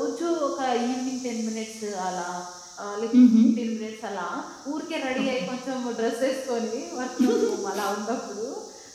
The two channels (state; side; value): identical; both; correlation 1.00